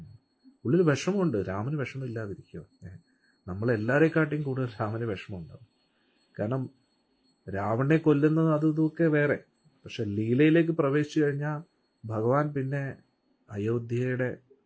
ഉള്ളിൽ വിഷമമുണ്ട്, രാമന് വിഷമമില്ലാതിരിക്കുക. നമ്മളെല്ലാവരെക്കാട്ടിയും കൂടുതൽ രാമന് വിഷമമുണ്ടാവും. കാരണം രാവണനെ കൊല്ലുന്നത് അതും ഇതൊക്കെ വേറെ, പക്ഷെ ലീലയിലേക്ക് പ്രവേശിച്ചു കഴിഞ്ഞാൽ ഭഗവാൻ പിന്നെ അയോധ്യയുടെ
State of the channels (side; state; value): both; identical; correlation 1.00